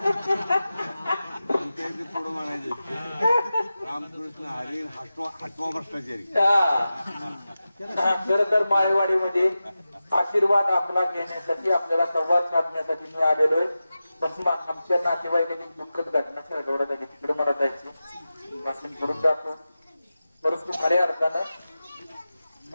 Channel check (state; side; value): inverted; both; correlation -0.94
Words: पुढे म्हणायचं रामकृष्ण हरी हटवा भ्रष्टाचारी. खरं तर माळेवाडीमध्ये आशीर्वाद आपला घेण्यासाठी, आपल्याला संवाद साधण्यासाठी मी आलेलोय. पण आमच्या नातेवाईकाची दुःखद घटना सगळ्या झाली. तिकडे मला जायचं वाचन करून जातो. परंतु खऱ्या अर्थानं